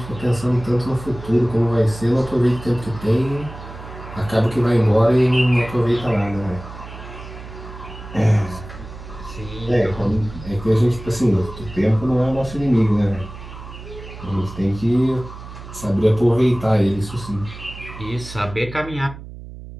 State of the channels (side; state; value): right; noise; hum, 14 dB below the sound